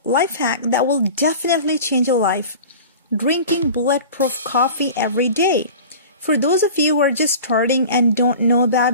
life hack that will definitely change your life. Drinking bulletproof coffee every day. For those of you who are just starting and don't know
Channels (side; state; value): both; inverted; correlation -0.38